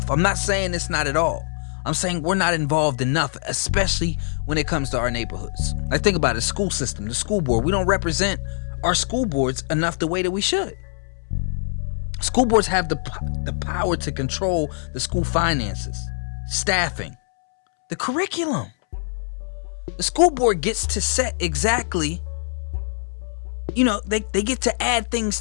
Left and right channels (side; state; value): right; silent; 63 dB below the other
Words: I'm not saying it's not at all. I'm saying we're not involved enough, especially when it comes to our neighborhoods. Like, think about it, school system, the school board. We don't represent our school boards enough the way that we should. School boards have the power to control the school finances, staffing, the curriculum. The school board gets to set exactly, they get to add things